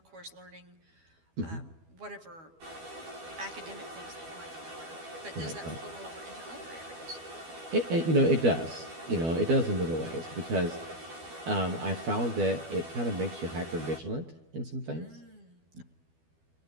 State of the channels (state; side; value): late; left; 12 ms